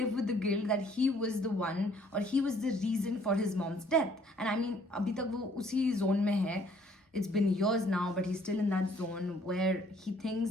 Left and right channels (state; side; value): normal; both; correlation 0.61